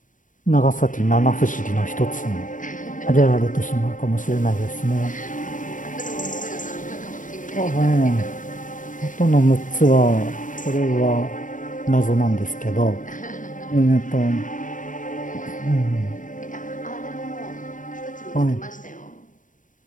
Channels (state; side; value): late; right; 0.38 ms